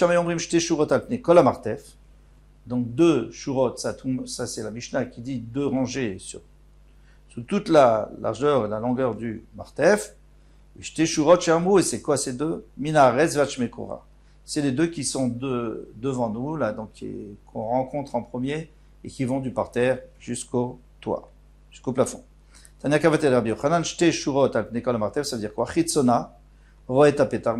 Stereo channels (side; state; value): both; identical; correlation 1.00